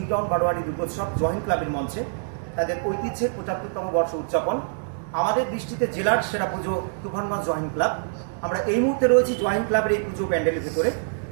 টাউন বারোয়ারি দুর্গোৎসব জয়েন্ট ক্লাবের মঞ্চে। তাদের ঐতিহ্যের ৭৫তম বর্ষ উদযাপন। আমাদের দৃষ্টিতে জেলার সেরা পুজো তুফানগঞ্জ জয়েন্ট ক্লাব। আমরা এই মুহূর্তে রয়েছি জয়েন্ট ক্লাবের এই পুজো প্যান্ডেলের ভেতরে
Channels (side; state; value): left; silent; digital silence